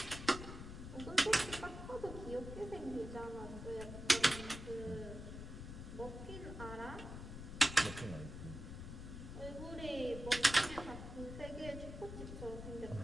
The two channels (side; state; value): left; noise; rumble, 9 dB below the sound